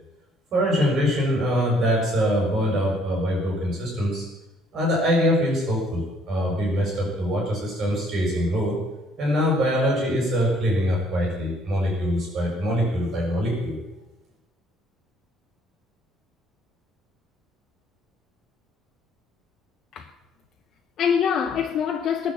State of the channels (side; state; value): both; normal; correlation 0.63